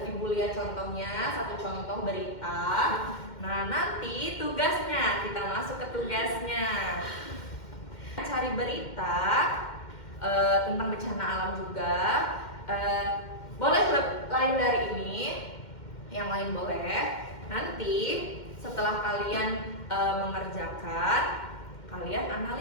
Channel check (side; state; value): right; late; 2.1 ms